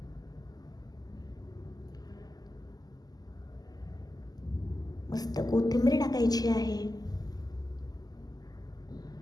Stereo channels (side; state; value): right; late; 0.19 ms